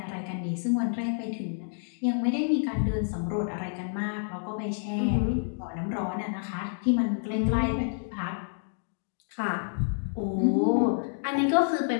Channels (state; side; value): silent; right; digital silence